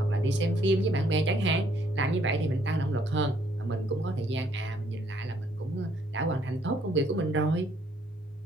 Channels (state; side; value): normal; both; correlation 0.67